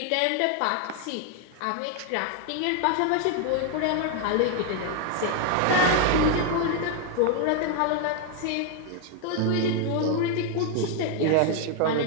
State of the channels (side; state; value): both; different; correlation 0.01